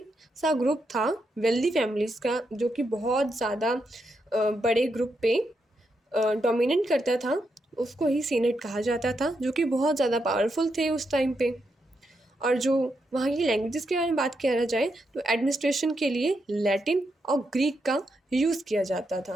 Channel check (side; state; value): both; normal; correlation 0.82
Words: सा ग्रुप था वेल्दी फैमिलीज़ का, जो कि बहुत ज़्यादा बड़े ग्रुप पे डोमिनेट करता था, उसको ही सीनेट कहा जाता था, जो कि बहुत ज़्यादा पावरफुल थे उस टाइम पे। और जो वहाँ की लैंग्वेजेस के बारे में बात किया जाए तो एडमिनिस्ट्रेशन के लिए लैटिन और ग्रीक का यूज़ किया जाता